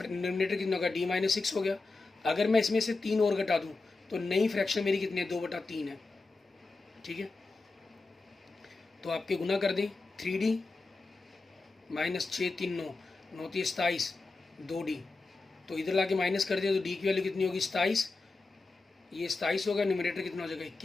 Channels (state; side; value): quieter; right; 3.6 dB